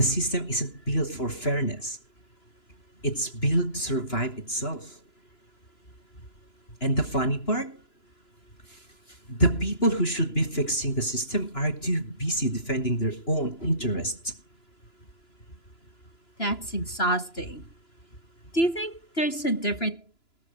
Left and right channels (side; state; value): right; late; 2.9 ms